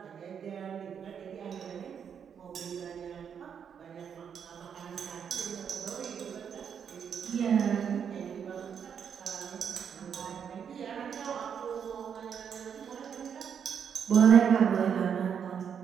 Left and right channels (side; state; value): left; quieter; 7.6 dB